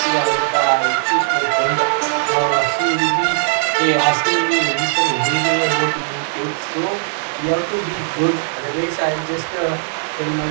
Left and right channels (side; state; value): left; silent; digital silence